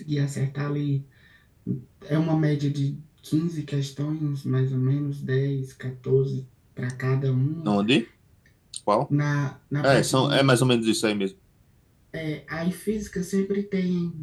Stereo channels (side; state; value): both; identical; correlation 1.00